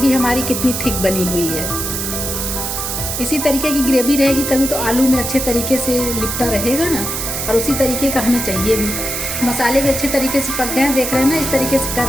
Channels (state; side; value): noise; right; hiss, 3 dB below the sound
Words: हमारी कितनी थिक बनी हुई है। इसी तरीके की ग्रेवी रहेगी तभी तो आलू में अच्छे तरीके से लिपटा रहेगा ना, और उसी तरीके का हमें चाहिए भी। मसाले भी अच्छे तरीके से पक गए हैं, देख रहे हैं ना, इस तरीके से कर